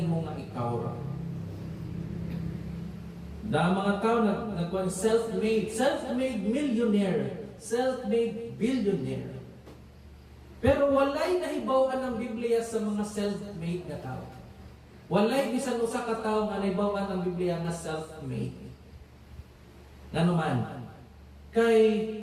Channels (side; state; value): both; identical; correlation 1.00